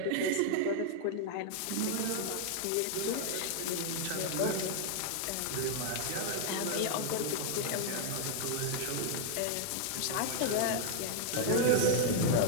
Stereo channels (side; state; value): both; different; correlation 0.00